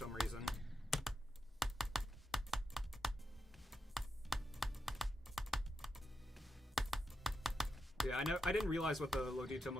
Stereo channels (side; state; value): both; normal; correlation 0.86